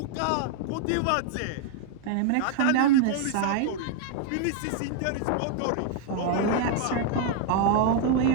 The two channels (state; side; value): different; both; correlation 0.00